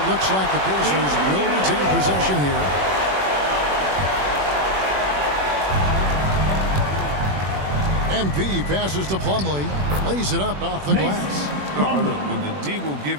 looks like the Pacers will retain possession here. MP passes to Plumlee. Lays it up off the glass. No, look, when the D will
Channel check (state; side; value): late; left; 21 ms